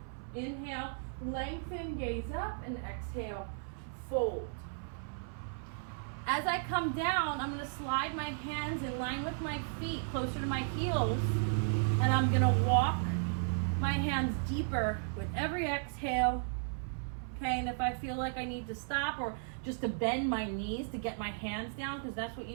Inhale, lengthen, gaze up, and exhale, fold. As I come down, I'm gonna slide my hands in line with my feet, closer to my heels, and I'm gonna walk my hands deeper with every exhale. Okay, and if I feel like I need to stop or just to bend my knees to get my hands down, because that's what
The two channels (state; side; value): silent; left; 54 dB below the other